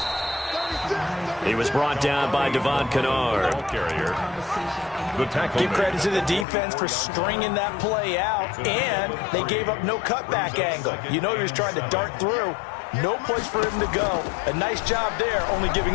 He was brought down by Devon Kennard. Give credit to the defense for stringing that play out, and they gave up no cutback angle. You know he was trying to dart through. No place for him to go. A nice job there, only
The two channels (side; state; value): right; drops out; at 6.5 s